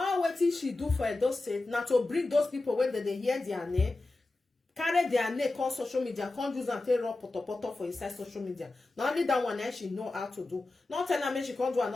what did she do for Edo State? Now to bring those people when they hear their name, carry their name on social media, can't use and take raw poto for inside social media. Not only that one, she know how to do. Not tell her she can't do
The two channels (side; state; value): right; quieter; 3.1 dB